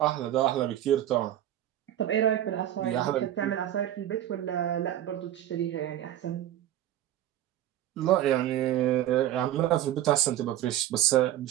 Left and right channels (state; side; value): quieter; left; 12.3 dB